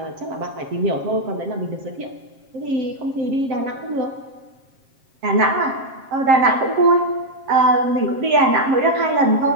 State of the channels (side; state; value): left; late; 7.5 ms